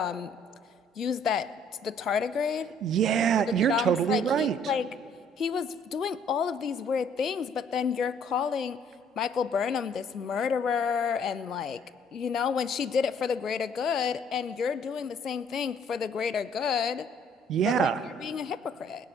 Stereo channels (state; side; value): normal; both; correlation 0.61